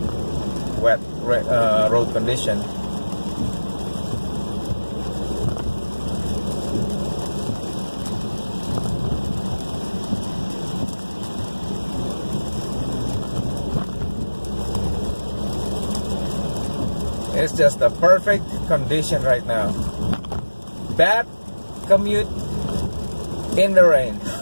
wet road condition. It's just the perfect condition right now. Bad commute in the rain.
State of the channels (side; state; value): both; inverted; correlation -1.00